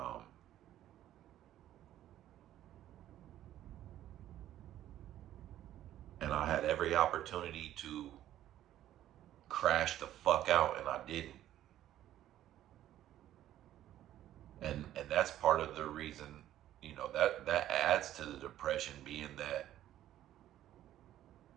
And I had every opportunity to crash the fuck out, and I didn't. And that's part of the reason, that adds to the depression, being that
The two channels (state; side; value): quieter; left; 12.6 dB